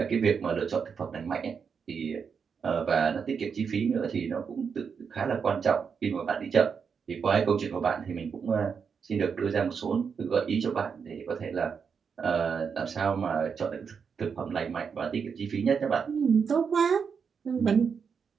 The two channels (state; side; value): quieter; left; 6.3 dB